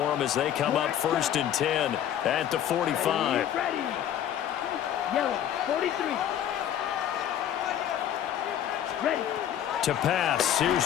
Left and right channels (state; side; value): quieter; right; 10.4 dB